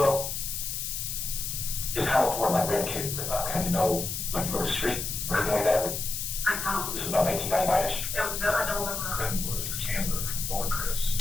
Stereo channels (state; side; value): noise; left; hiss, 4 dB below the sound